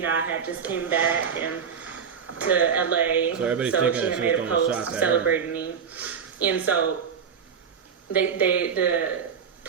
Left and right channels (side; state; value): left; quieter; 6.9 dB